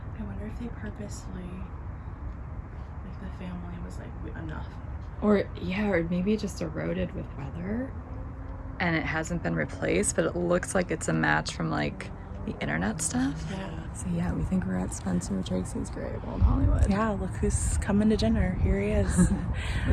I wonder if they purposely, like the family was like, enough. Or maybe it just eroded with weather and it hasn't been replaced, but it looks like it's a match from like the internet stuff. Yeah. So we think we're at Spencer Tracy's grave, Old Hollywood. Yeah, look who's coming to dinner. Here he is.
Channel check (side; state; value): both; identical; correlation 1.00